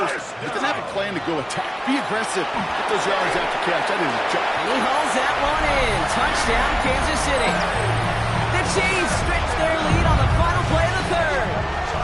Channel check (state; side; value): identical; both; correlation 1.00